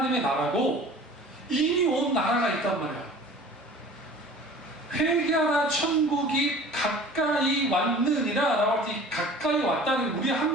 나라고 이미 온 나라가 있단 말이야. 회개하라 천국이 가까이 왔느니라 라고 할 때 가까이 왔다는 우리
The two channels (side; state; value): both; normal; correlation 0.44